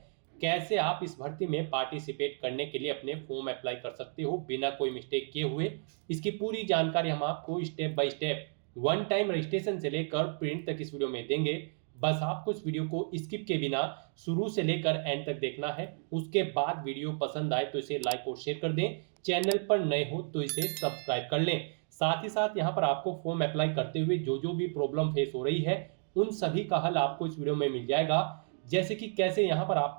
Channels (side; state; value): left; silent; 56 dB below the other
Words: कैसे आप इस भर्ती में पार्टिसिपेट करने के लिए अपने फॉर्म अप्लाई कर सकते हो बिना कोई मिस्टेक किए हुए, इसकी पूरी जानकारी हम आपको step by step one time registration से लेकर प्रिंट तक इस वीडियो में देंगे। बस आपको इस वीडियो को स्किप के बिना शुरू से लेकर एंड तक देखना है। उसके बाद वीडियो पसंद आए तो इसे लाइक और शेयर कर दें। चैनल पर नए हो तो इसे सब्सक्राइब कर लें। साथ ही साथ यहाँ पर आपको फॉर्म अप्लाई करते हुए जो जो भी प्रॉब्लम फेस हो रही है उन सभी का हल आपको इस वीडियो में मिल जाएगा। जैसे कि कैसे यहाँ पर